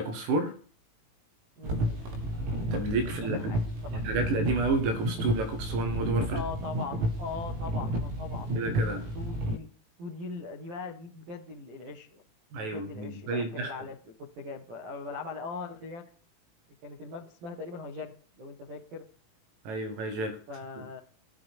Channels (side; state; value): left; late; 18 ms